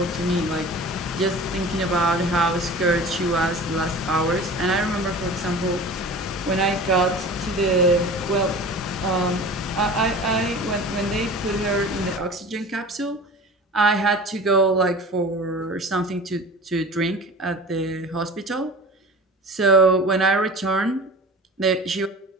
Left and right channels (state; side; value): normal; both; correlation 0.38